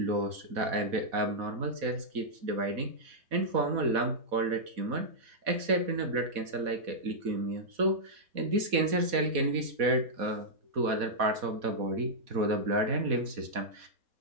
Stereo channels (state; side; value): late; left; 4.1 ms